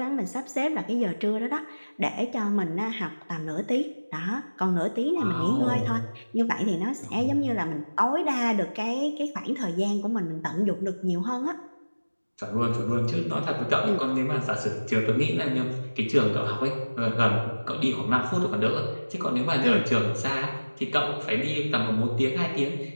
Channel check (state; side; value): inverted; both; correlation -1.00